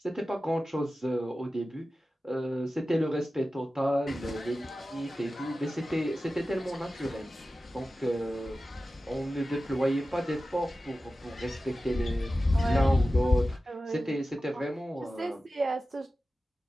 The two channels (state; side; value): normal; both; correlation 0.94